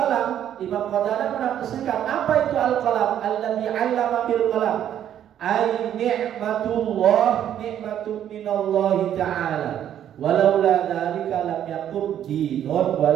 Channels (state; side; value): quieter; left; 10.4 dB